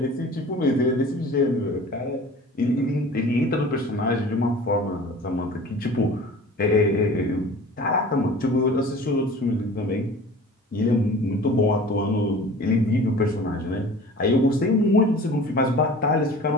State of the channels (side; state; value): both; normal; correlation 0.42